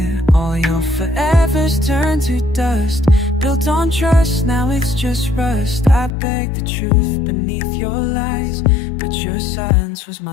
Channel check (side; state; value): right; drops out; at 6.2 s